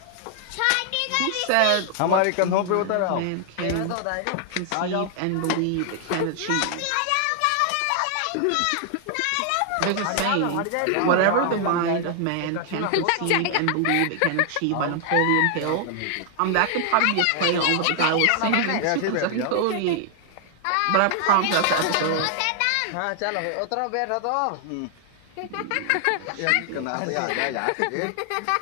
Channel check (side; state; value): both; different; correlation 0.00